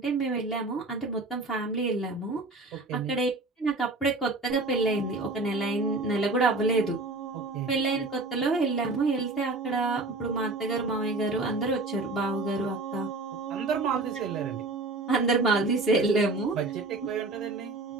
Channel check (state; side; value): quieter; left; 3.1 dB